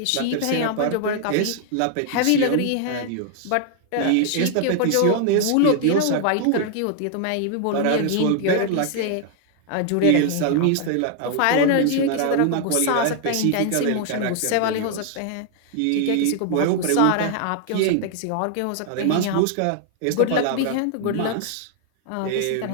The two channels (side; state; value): both; different; correlation 0.00